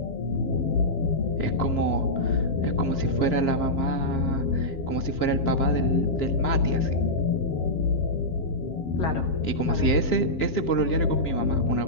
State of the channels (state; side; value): late; right; 7.4 ms